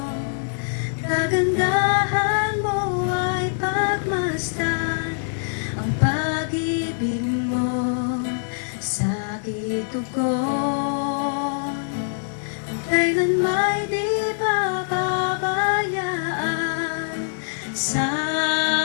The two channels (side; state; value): right; silent; digital silence